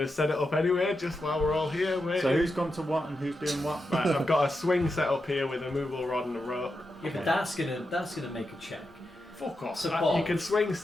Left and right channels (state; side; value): normal; both; correlation 0.87